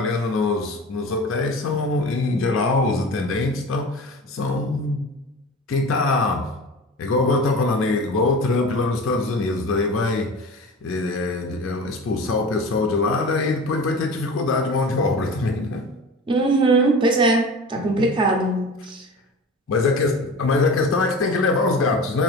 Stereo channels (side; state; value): both; normal; correlation 0.35